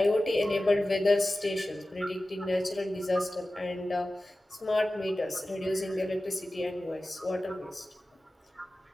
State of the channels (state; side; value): normal; both; correlation 0.95